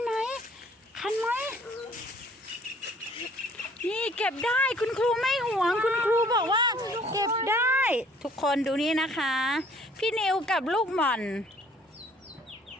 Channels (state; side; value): normal; both; correlation 0.57